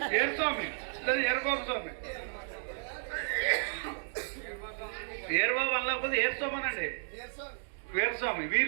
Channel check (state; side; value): silent; left; digital silence